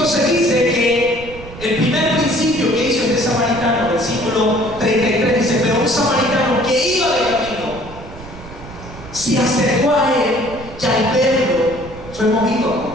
dice que el primer principio que hizo este samaritano, versículo 33, dice: pero un samaritano que iba de camino se acercó a él y al verlo fue movido a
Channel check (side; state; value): right; noise; rumble, 15 dB below the sound